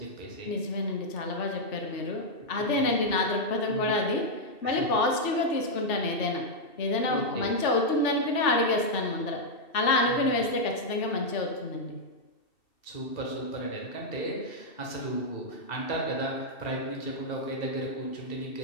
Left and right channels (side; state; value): right; late; 2.7 ms